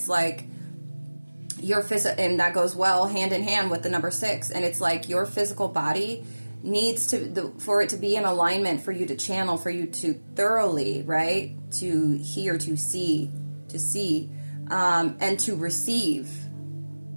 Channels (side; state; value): both; inverted; correlation -1.00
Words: like your and that goes well hand in hand with the number 6, and it's like your physical body needs to, for it to be in alignment, for you to channel, for you to thoroughly, right? To hear, to see, and to receive.